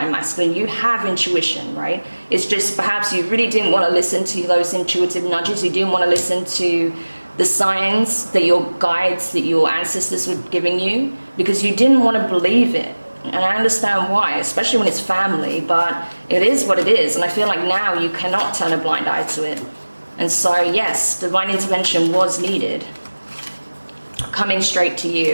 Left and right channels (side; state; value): both; inverted; correlation -1.00